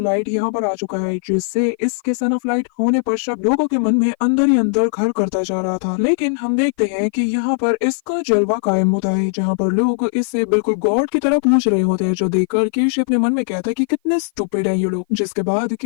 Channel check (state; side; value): silent; right; 55 dB below the other